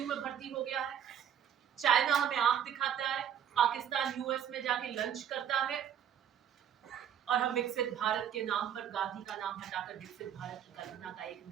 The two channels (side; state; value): left; quieter; 9.2 dB